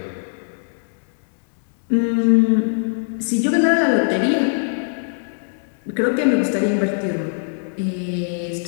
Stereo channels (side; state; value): right; silent; digital silence